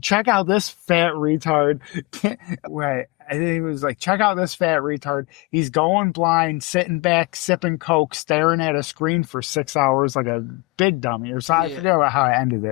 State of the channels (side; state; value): right; quieter; 24.0 dB